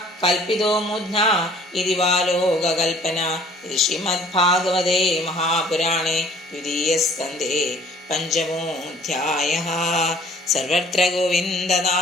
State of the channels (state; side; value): normal; both; correlation 0.54